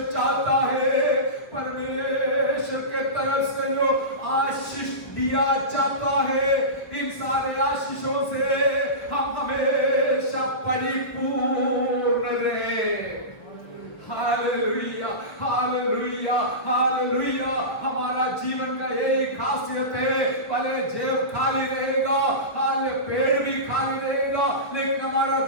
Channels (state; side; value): late; right; 1.4 ms